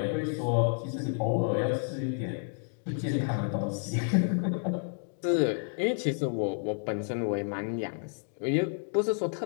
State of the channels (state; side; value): silent; right; 56 dB below the other